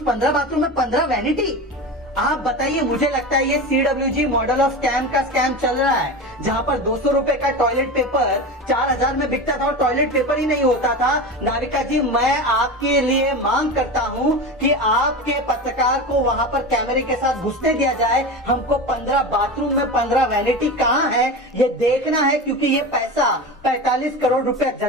15 बाथरूम में 15 वैनिटी। आप बताइए, मुझे लगता है ये CWG मॉडल ऑफ स्कैम का स्कैम चल रहा है, जहां पर 200 रुपए का टॉयलेट पेपर 4000 में बिकता था और टॉयलेट पेपर ही नहीं होता था। नाविका जी, मैं आपके लिए मांग करता हूं कि आपके पत्रकार को वहां पर कैमरे के साथ घुसने दिया जाए। हमको 15 बाथरूम में 15 वैनिटी कहां है ये देखना है, क्योंकि ये पैसा 45 करोड़ रुपए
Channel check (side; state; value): both; normal; correlation 0.26